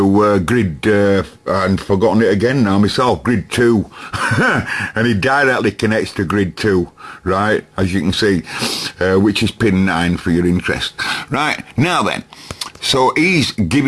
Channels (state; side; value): identical; both; correlation 1.00